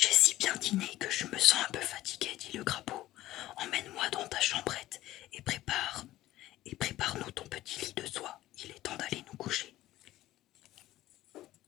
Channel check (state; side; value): quieter; right; 15.3 dB